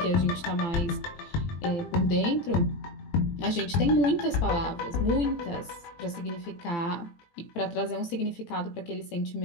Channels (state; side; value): late; right; 18 ms